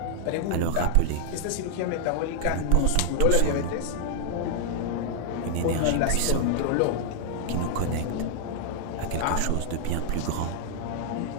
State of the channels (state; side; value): different; both; correlation 0.00